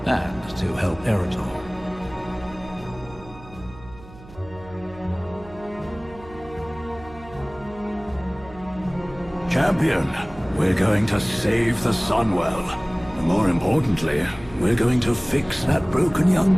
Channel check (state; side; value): noise; right; hum, 19 dB below the sound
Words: and to help Arator. Champion, we're going to save the Sunwell. And more importantly, we're going to fix that broken young